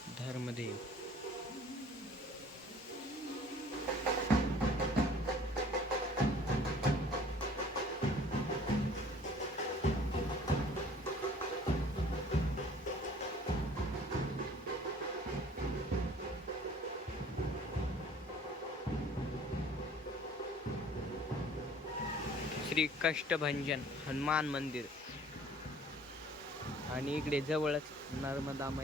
धर्मदेव, श्री कष्टभंजन हनुमान मंदिर, आणि इकडे जवळच नर्मदा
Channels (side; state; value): both; normal; correlation 0.52